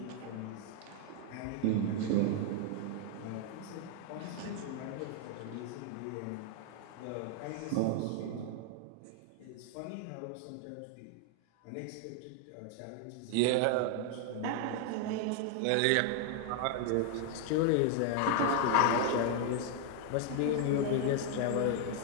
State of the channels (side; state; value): both; different; correlation 0.00